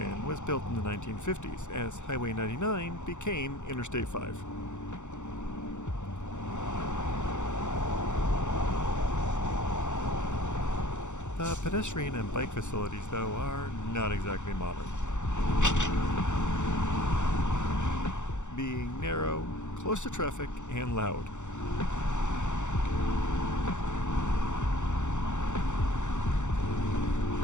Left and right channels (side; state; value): right; late; 0.84 ms